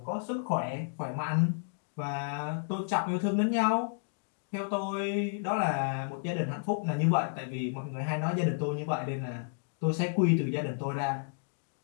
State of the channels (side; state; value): right; silent; digital silence